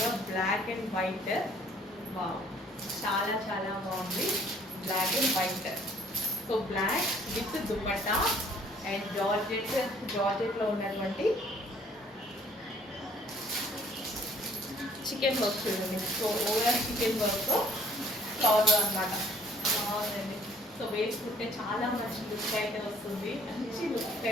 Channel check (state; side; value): normal; both; correlation 0.59